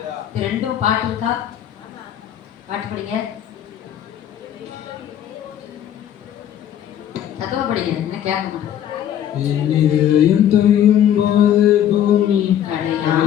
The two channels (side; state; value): right; quieter; 10.5 dB